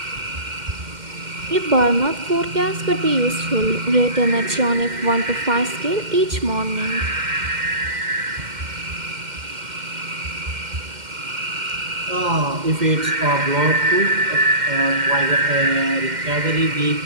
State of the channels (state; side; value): late; left; 2.1 ms